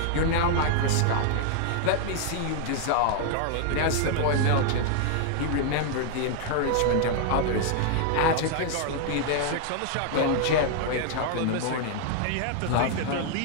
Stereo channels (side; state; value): both; different; correlation 0.00